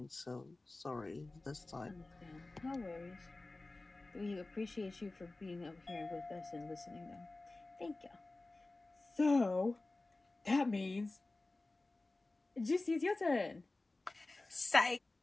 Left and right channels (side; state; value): right; quieter; 3.1 dB